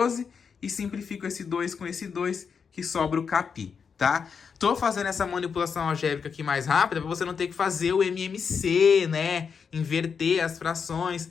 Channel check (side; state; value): right; quieter; 6.2 dB